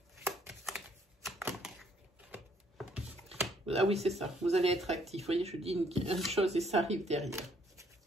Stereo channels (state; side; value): normal; both; correlation 0.66